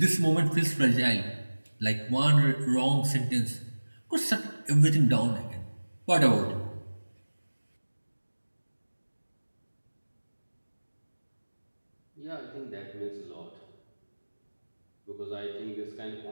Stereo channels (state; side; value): inverted; both; correlation -1.00